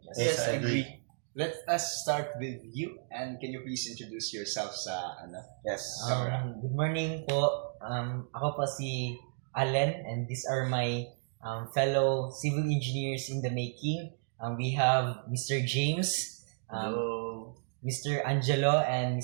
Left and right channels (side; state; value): left; silent; digital silence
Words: Yes, I agree. Let us start with you, and can you please introduce yourself sa Yes. Good morning po. Ako po si Allen and these are my fellow civil engineers in the making. We have Mr. James, Hello. Mr. Angelo, and